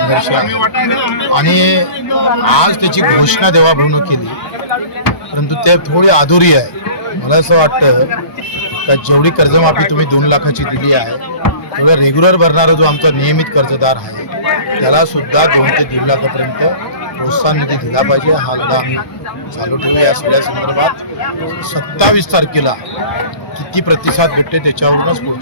आहे आणि आज त्याची घोषणा देवाभाऊनं केली परंतु ते थोडी अधुरी आहे. मला असं वाटतं का जेवढी कर्जमाफी तुम्ही 2 लाखाची दिली आहे तेवढा रेग्युलर भरणारा जो आमचा नियमित कर्जदार आहे त्याला सुद्धा 2 ते 1.5 लाखापर्यंत प्रोत्साहन निधी दिला पाहिजे. हा लढा आम्ही चालू ठेवू. या सगळ्या संदर्भात 27 तारखेला किती प्रतिसाद भेटते त्याच्यावरूनच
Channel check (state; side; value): late; right; 1.2 ms